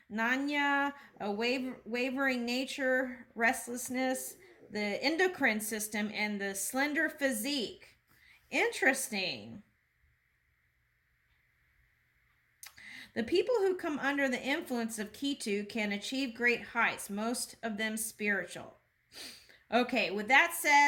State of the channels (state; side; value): identical; both; correlation 1.00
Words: nanya, a wavering nature, restlessness, the endocrine system, and the slender physique. Interesting. The people who come under the influence of Ketu can achieve great heights, most of them spiritual. Okay, with that